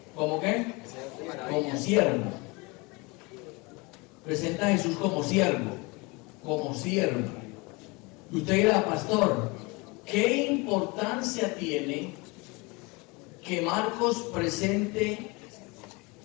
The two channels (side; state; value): right; quieter; 26.7 dB